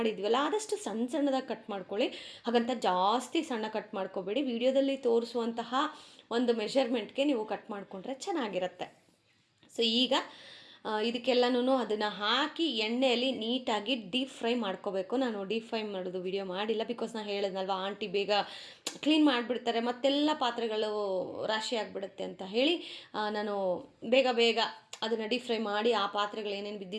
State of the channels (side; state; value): both; identical; correlation 1.00